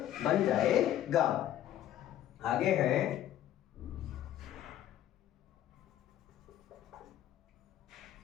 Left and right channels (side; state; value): right; quieter; 12.0 dB